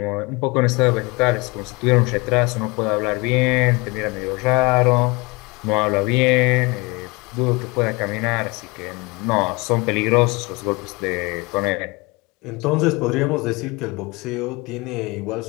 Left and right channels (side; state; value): right; quieter; 26.0 dB